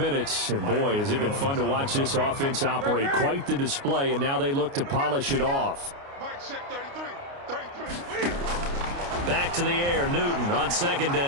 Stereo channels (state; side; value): late; left; 29 ms